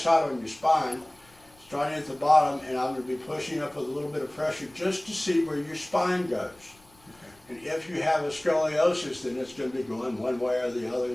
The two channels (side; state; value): left; noise; rumble, 29 dB below the sound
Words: on your spine, starting at the bottom, and I'm going to be pushing up with a little bit of pressure just to see where your spine goes. Okay. And if you have a scoliosis, then it's going to be going one way or the other